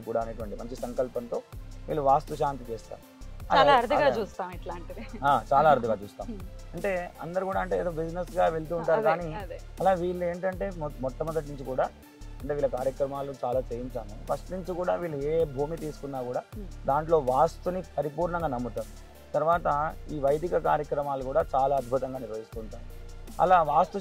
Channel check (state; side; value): identical; both; correlation 1.00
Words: కూడా అనేటువంటి మంచి సంకల్పంతో వీళ్ళు వాస్తు శాంతి చేస్తారు. చాలా అరుదుగా చూస్తాం. అంటే అందరు కూడా అంటే ఏదో బిజినెస్ గా వెళ్తూ ఉంటారు, కానీ అలా వీళ్ళు ఏంటంటే మొట్టమొదటి నుంచి కూడా అంటే వీళ్ళ కార్యక్రమాలు చాలా చేయించాము. ఫస్ట్ నుంచి కూడా వీళ్ళు ఏ భూమి తీసుకున్నా కూడా దాంట్లో వాస్తుని పరిపూర్ణంగా నమ్ముతారు. తర్వాత ఈ వైదిక కార్యక్రమాలు కూడా చాలా అద్భుతంగా నిర్వహిస్తుంటారు. అలా వాస్తు